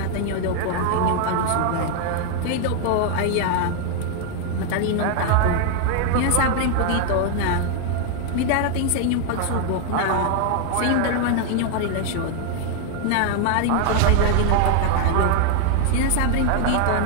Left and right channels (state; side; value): different; both; correlation 0.00